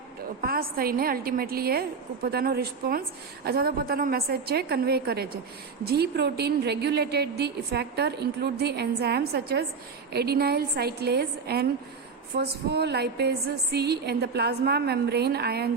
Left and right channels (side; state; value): left; quieter; 5.2 dB